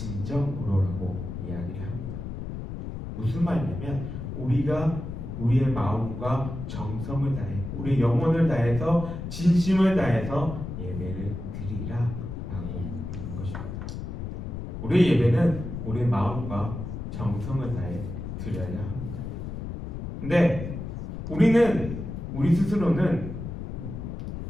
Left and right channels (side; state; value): left; noise; rumble, 7 dB below the sound